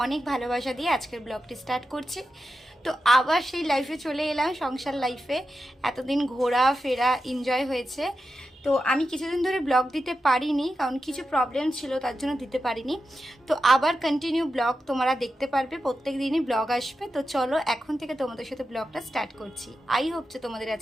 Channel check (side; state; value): both; normal; correlation 0.90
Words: অনেক ভালোবাসা দিয়ে আজকের ব্লগটি স্টার্ট করছি। তো আবার সেই লাইফে চলে এলাম, সংসার লাইফে। এতদিন ঘোরা ফেরা এনজয় হয়েছে। তো আমি কিছুদিন ধরে ব্লগ দিতে পারিনি, কারণ কিছু প্রবলেম ছিল, তার জন্য দিতে পারিনি। তো আবার কন্টিনিউ ব্লগ তোমরা দেখতে পারবে, প্রত্যেক দিনই ব্লগ আসবে। তো চলো এখন থেকে তোমাদের সাথে ব্লগটা স্টার্ট করছি। আই হোপ যে তোমাদের